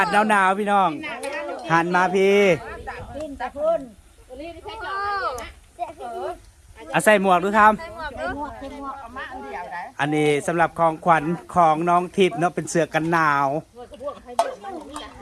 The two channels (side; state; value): both; identical; correlation 1.00